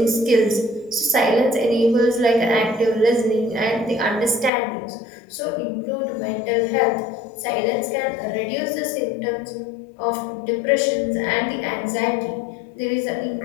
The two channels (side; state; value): right; drops out; at 4.5 s